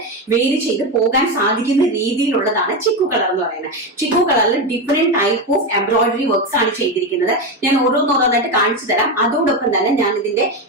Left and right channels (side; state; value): both; normal; correlation 0.14